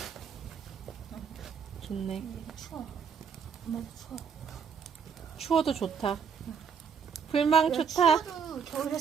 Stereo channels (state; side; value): quieter; left; 6.5 dB